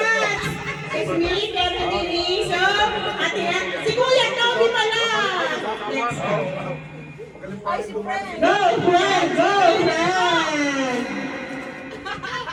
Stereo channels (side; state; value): both; identical; correlation 1.00